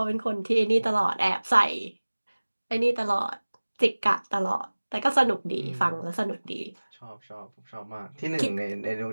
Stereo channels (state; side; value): inverted; both; correlation -1.00